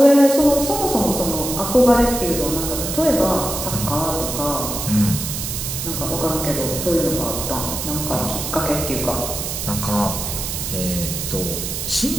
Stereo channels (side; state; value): right; noise; hiss, 4 dB below the sound